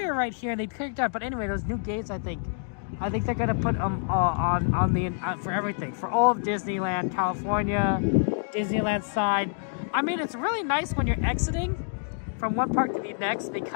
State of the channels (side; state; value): right; silent; digital silence